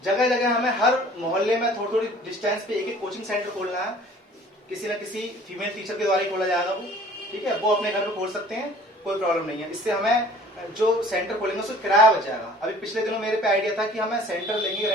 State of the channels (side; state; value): both; normal; correlation 0.51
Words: जगह जगह हमें हर मोहल्ले में थोड़ी थोड़ी डिस्टेंस पे एक कोचिंग सेंटर खोलना है। किसी न किसी फीमेल टीचर के द्वारा ही खोला जाएगा वो, ठीक है। वो अपने घर में खोल सकते हैं, कोई प्रॉब्लम नहीं है। इससे हमें जो सेंटर खोलेंगे उससे किराया बच जाएगा। अभी पिछले दिनों मेरे पे आइडिया था कि हमें सेंटर लेंगे